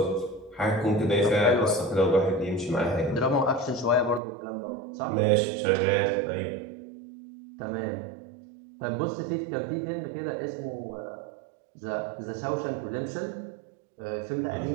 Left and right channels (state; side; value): drops out; left; at 4.2 s